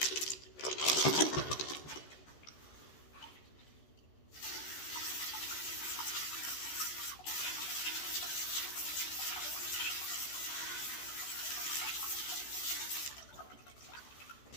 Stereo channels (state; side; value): late; right; 14 ms